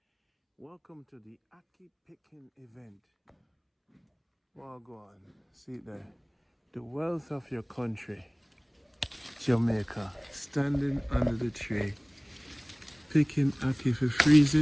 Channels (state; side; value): identical; both; correlation 1.00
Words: Welcome to the Ackee picking event. Well, go on. See there. The wealth of your country, Jamaica, standing under the tree, picking Ackee for freeze